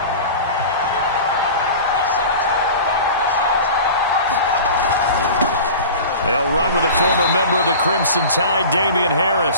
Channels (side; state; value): both; inverted; correlation -0.36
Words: They'll run with a former member of the Crimson Tide, Damian